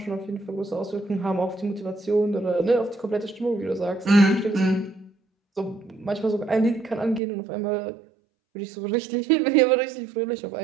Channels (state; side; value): drops out; left; at 7.2 s